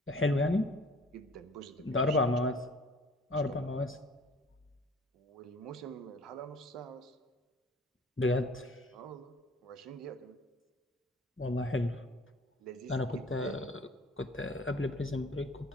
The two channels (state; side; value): normal; both; correlation 0.51